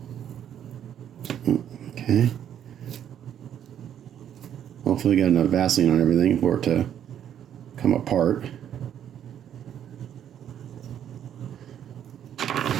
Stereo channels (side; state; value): left; quieter; 9.8 dB